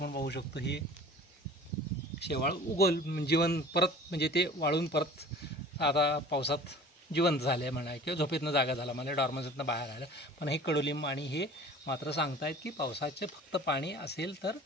पाहू शकतो हे शेवाळ जिवंत परत, म्हणजे ते वाळून परत आता पावसात जिवंत झाले म्हणा किंवा झोपेतनं जागा झाला, म्हणजे डॉर्मन्सीतनं बाहेर आलं. पण हे कडुलिंब आणि हे मात्र सांगतायत की पावसाचे फक्त पाणी असेल तर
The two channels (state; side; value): normal; both; correlation 0.44